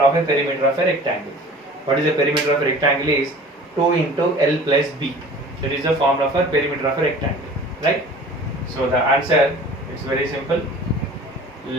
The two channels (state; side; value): normal; both; correlation 0.44